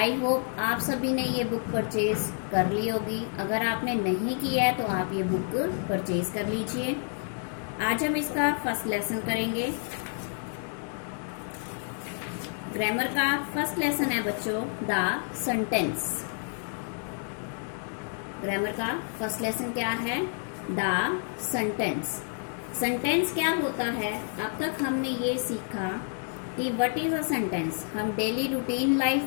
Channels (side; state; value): right; silent; 58 dB below the other